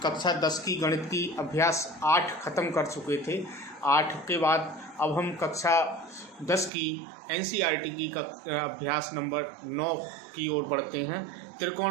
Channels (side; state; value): left; drops out; at 6.7 s